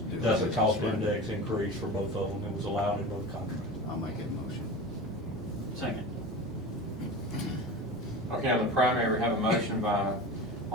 doing That's a business, cost right? index increase for both of them. It was allowed in both contracts. I'll make a motion. Second. Okay, on the primary, we have a motion by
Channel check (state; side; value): normal; both; correlation 0.31